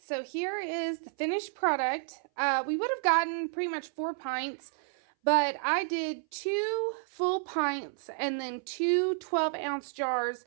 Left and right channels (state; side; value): silent; left; 57 dB below the other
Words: here is the finished product. We would have gotten pretty much 4 pints, but I did 2 full pints and then 2 12-ounce jars.